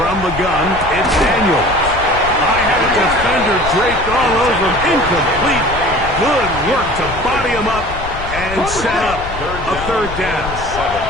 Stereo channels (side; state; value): left; noise; rumble, 10 dB below the sound